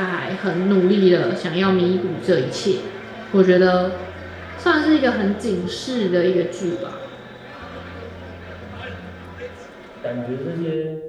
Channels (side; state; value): both; identical; correlation 1.00